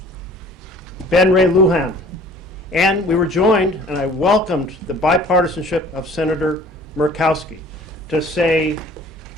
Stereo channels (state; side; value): normal; both; correlation 0.50